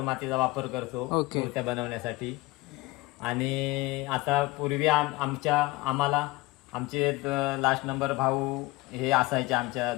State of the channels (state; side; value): quieter; right; 21.2 dB